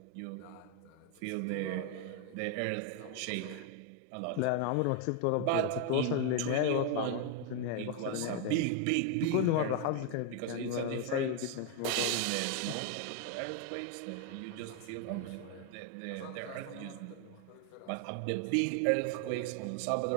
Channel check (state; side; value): different; both; correlation 0.01